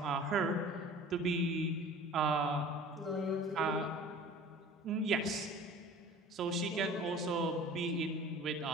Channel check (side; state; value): both; normal; correlation 0.43